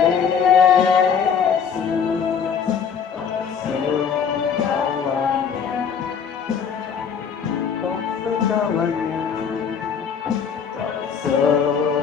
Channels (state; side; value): quieter; right; 6.9 dB